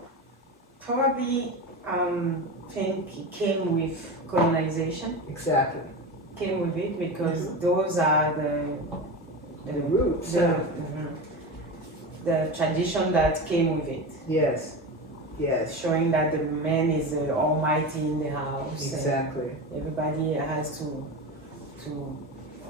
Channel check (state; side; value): normal; both; correlation 0.24